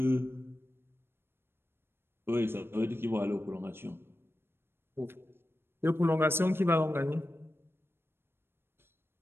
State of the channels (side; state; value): left; late; 0.11 ms